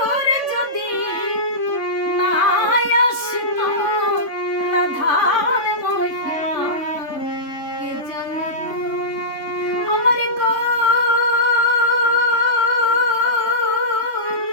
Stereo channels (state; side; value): late; right; 3.5 ms